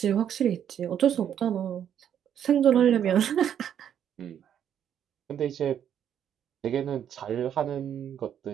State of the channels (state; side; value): quieter; left; 9.4 dB